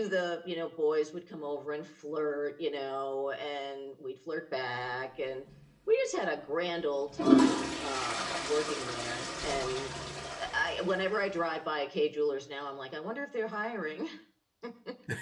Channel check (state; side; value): identical; both; correlation 1.00